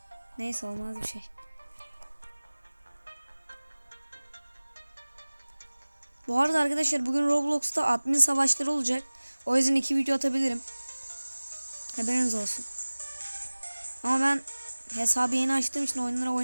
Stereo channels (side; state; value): both; inverted; correlation -1.00